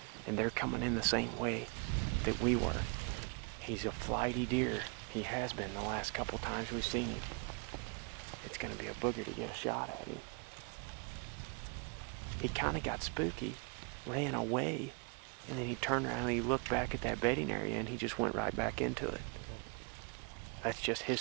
and they're coming in the same way that we were. He's a flighty deer. He has been the last couple times we've seen him. It's gonna be a booger to get a shot at him. He kind of got spooky, ran away, and then he turned around and he looked back at that bedding area and he just went right back into it. That's just his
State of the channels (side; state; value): left; quieter; 33.0 dB